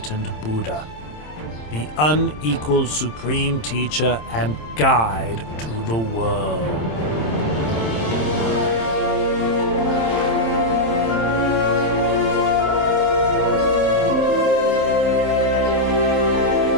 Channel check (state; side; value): late; right; 27 ms